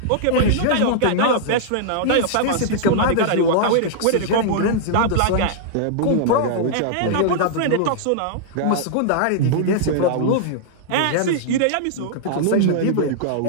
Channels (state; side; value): different; both; correlation -0.01